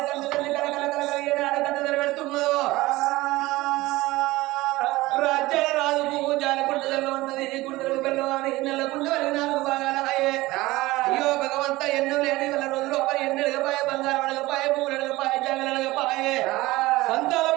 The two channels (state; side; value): quieter; left; 19.3 dB